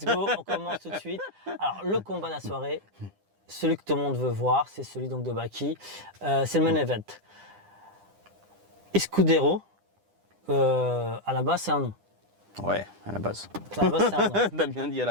go, on commence tout de suite. Alors, le combat de la soirée, celui que tout le monde veut voir, c'est celui donc de Baki. C'est le main event. Escudero, à la base, c'est un nom. Ouais, à la base. À la base, c'est un nom. T'as bien dit à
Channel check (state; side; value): late; left; 9.9 ms